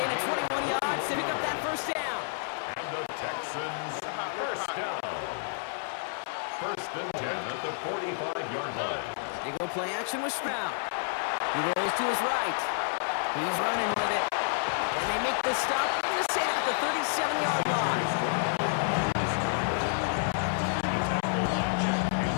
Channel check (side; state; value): right; silent; 58 dB below the other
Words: of 21 yards to pick up that first down. And the Texans first down. 1st and 10 at the 45-yard line. They go play action with Stroud. He rolls to his right. He's running with it. And they make the stop. I'm going to say at the 37-yard line. Tackle by Jack